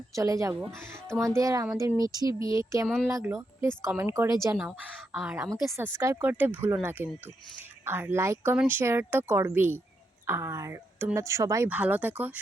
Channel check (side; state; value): both; normal; correlation 0.82